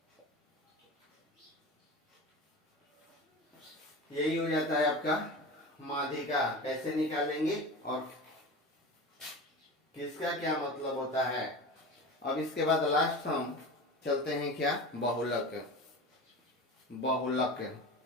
यही हो जाता है आपका माध्यिका। कैसे निकालेंगे और किसका क्या मतलब होता है। अब इसके बाद लास्ट हम चलते हैं क्या बहुलक।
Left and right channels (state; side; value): normal; both; correlation 0.30